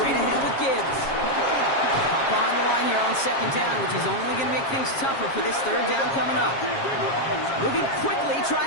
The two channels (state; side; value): late; right; 7.4 ms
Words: ahead with Gibbs. Hop on the line here on second down, which is only going to make things tougher for this third down coming up. Moving quickly,